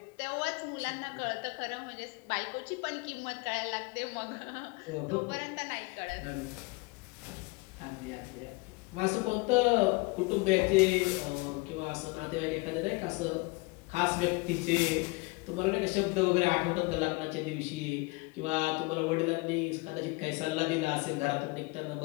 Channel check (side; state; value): right; quieter; 26.5 dB